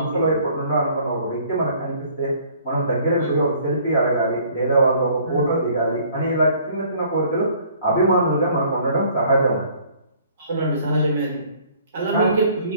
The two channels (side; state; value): both; inverted; correlation -0.57